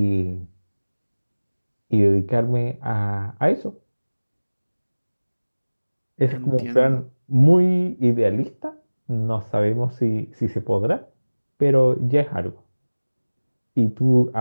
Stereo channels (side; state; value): both; inverted; correlation -1.00